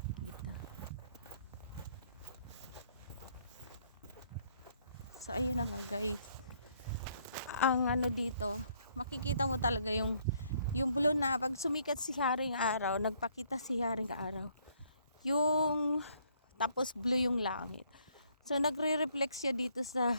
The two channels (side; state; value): both; inverted; correlation -0.67